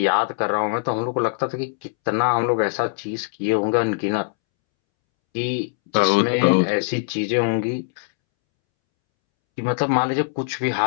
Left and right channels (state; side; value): silent; right; 64 dB below the other